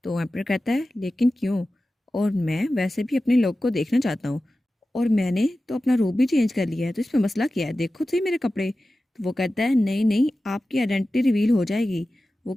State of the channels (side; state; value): both; normal; correlation 0.95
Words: तो एम्पर कहता है लेकिन क्यों, और मैं वैसे भी अपने लोग को देखना चाहता हूँ, और मैंने तो अपना रूप भी चेंज कर लिया है, तो इसमें मसला क्या है, देखो तो सही मेरे कपड़े। तो वो कहता है नहीं नहीं, आपकी आइडेंटिटी रिवील हो जाएगी। वो